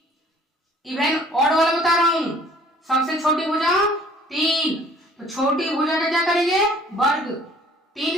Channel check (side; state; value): both; normal; correlation 0.55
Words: इवन ऑड वाला बता रहा हूं। सबसे छोटी भुजा 3, तो छोटी भुजा का क्या करेंगे? वर्ग।